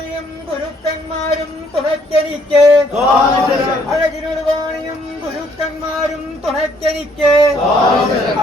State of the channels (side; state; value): both; normal; correlation 0.66